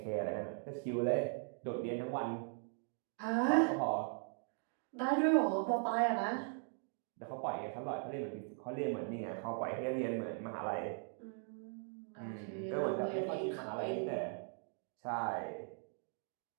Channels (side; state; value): left; silent; 51 dB below the other